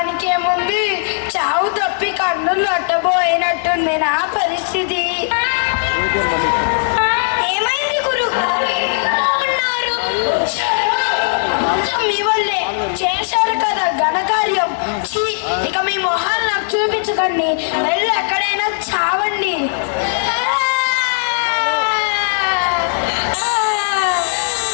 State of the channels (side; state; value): right; silent; digital silence